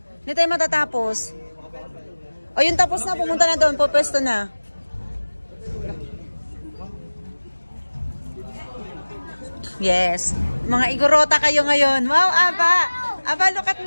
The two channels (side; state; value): both; inverted; correlation -1.00